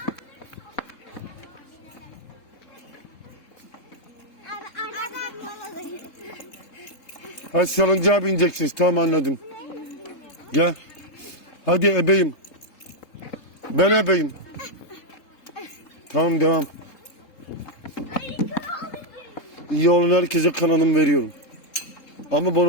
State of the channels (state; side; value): late; right; 3.7 ms